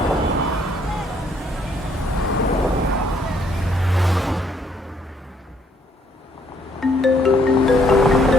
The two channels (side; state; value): both; normal; correlation 0.67